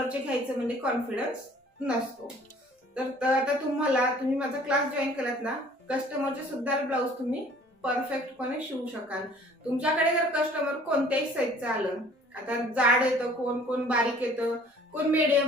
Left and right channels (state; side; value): normal; both; correlation 0.53